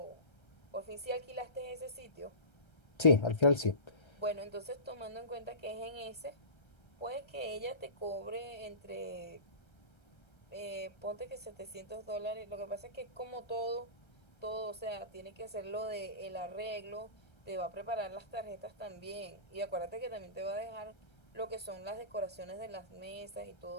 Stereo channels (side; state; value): right; late; 1.3 ms